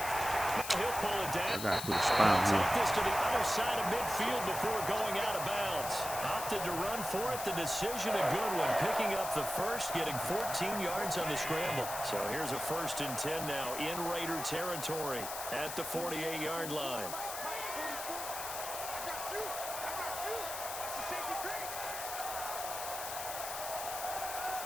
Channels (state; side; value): noise; left; hiss, 7 dB below the sound